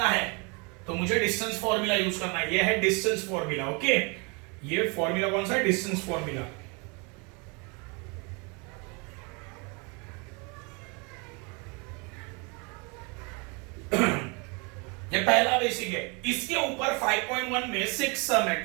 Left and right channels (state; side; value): quieter; left; 31.1 dB